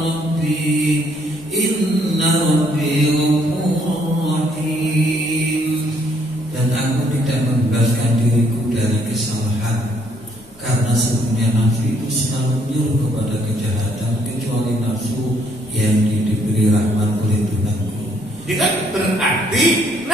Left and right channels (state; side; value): normal; both; correlation 0.68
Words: rabbi inna rabbi ghafurur rahim. Dan aku tidak membebaskan diriku dari kesalahan, karena sebenarnya nafsu itu selalu menyuruh kepada kejahatan kecuali Berarti